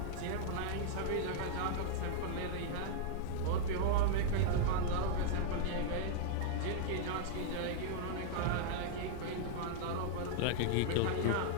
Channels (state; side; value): different; both; correlation -0.01